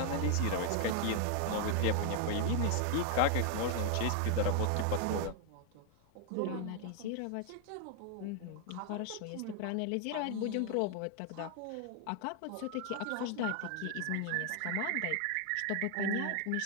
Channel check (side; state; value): both; different; correlation 0.00